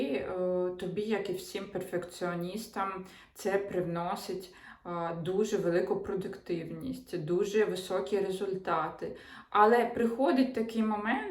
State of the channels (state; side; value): identical; both; correlation 1.00